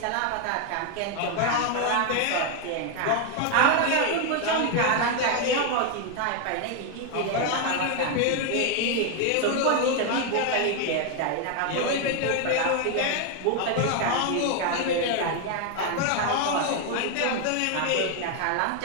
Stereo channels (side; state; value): both; different; correlation 0.01